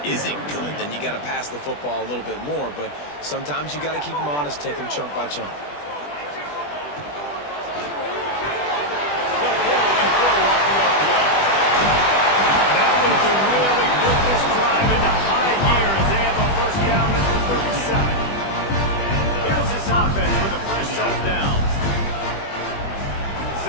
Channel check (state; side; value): late; right; 20 ms